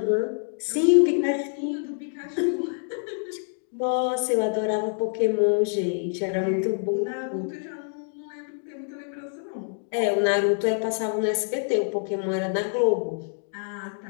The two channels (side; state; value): right; silent; digital silence